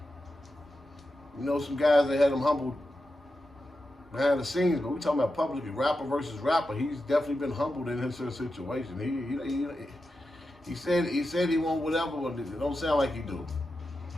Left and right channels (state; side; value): normal; both; correlation 0.90